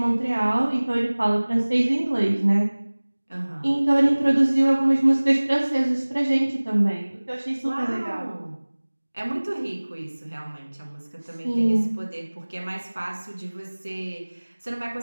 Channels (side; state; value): both; inverted; correlation -1.00